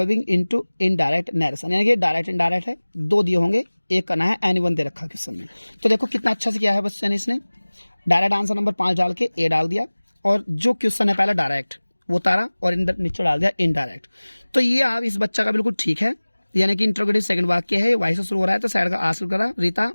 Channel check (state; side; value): inverted; both; correlation -1.00